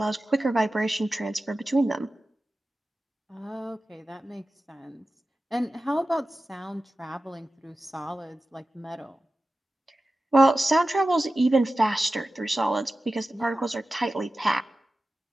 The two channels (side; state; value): both; normal; correlation 0.95